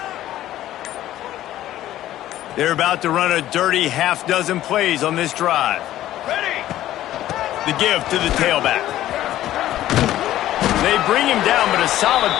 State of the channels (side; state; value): right; quieter; 13.6 dB